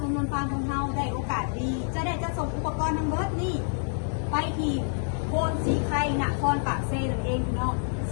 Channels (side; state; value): right; silent; 60 dB below the other